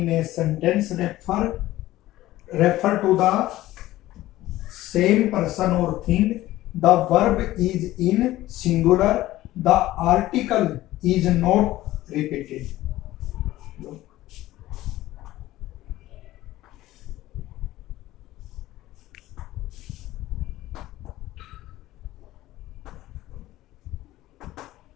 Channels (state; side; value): quieter; right; 15.9 dB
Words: a sentence refer to the same person or thing, the verb is in singular, the article is not repeated.